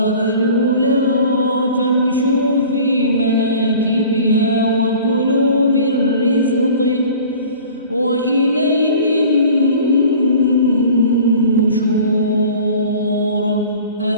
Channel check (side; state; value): both; inverted; correlation -0.45